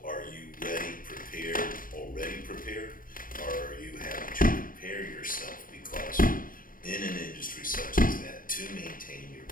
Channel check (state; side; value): late; right; 0.40 ms